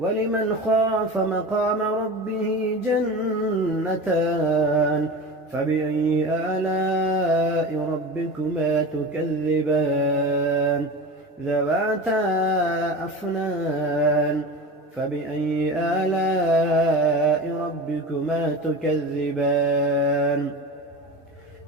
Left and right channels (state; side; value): normal; both; correlation 0.30